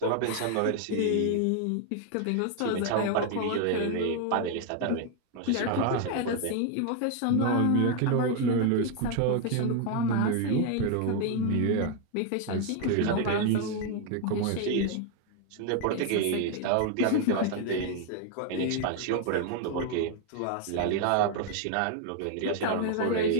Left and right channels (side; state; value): both; different; correlation 0.01